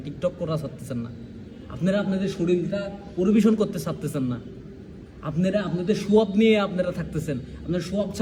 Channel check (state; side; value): identical; both; correlation 1.00